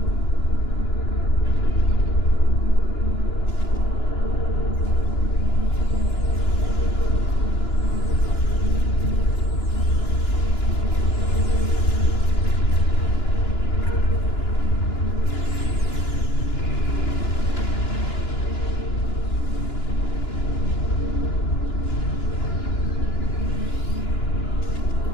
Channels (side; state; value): right; late; 2.9 ms